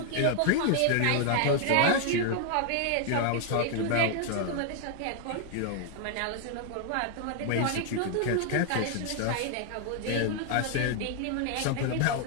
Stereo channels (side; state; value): both; different; correlation 0.00